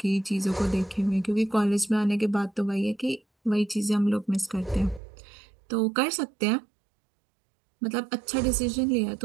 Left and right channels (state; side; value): drops out; left; at 5.0 s